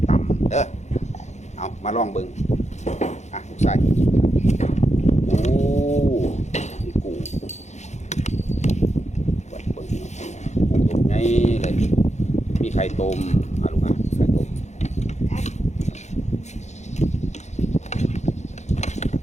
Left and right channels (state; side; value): late; right; 0.33 ms